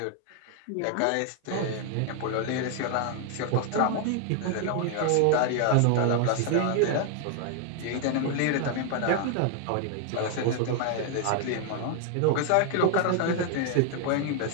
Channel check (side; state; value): both; different; correlation 0.00